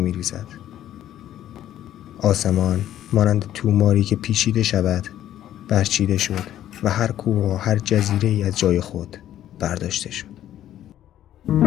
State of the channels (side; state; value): right; quieter; 12.0 dB